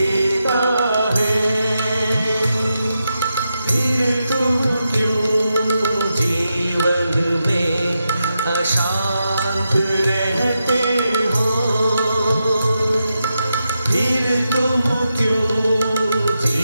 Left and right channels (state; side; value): inverted; both; correlation -0.87